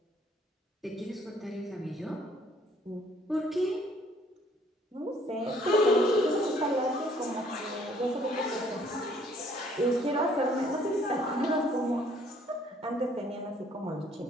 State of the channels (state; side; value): normal; both; correlation 0.61